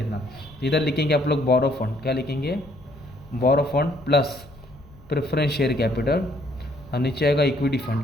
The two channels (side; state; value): left; noise; rumble, 23 dB below the sound